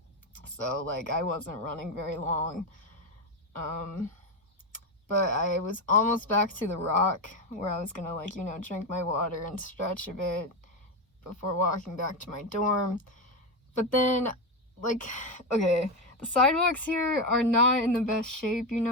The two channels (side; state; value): both; normal; correlation 0.12